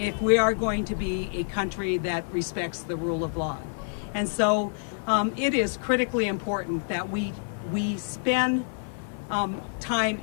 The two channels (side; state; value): right; silent; 56 dB below the other